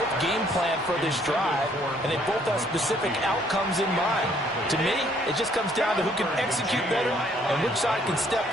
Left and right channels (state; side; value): normal; both; correlation 0.64